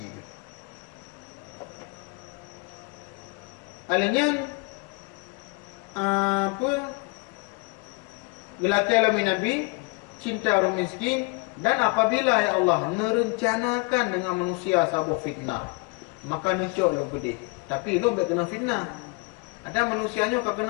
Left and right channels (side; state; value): right; quieter; 30.0 dB